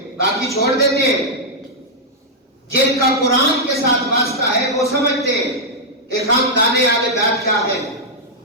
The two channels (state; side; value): normal; both; correlation -0.04